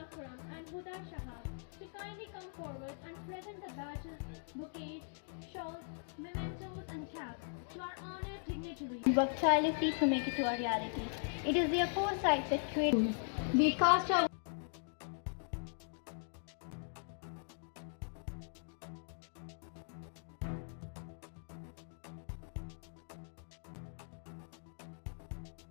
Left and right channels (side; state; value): right; silent; digital silence